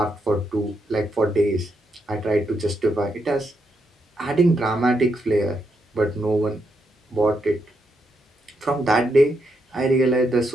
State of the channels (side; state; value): both; normal; correlation 0.80